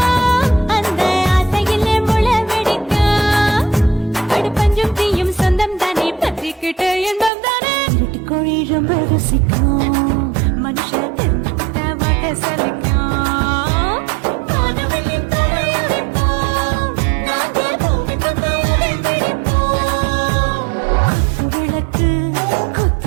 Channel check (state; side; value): drops out; left; at 7.3 s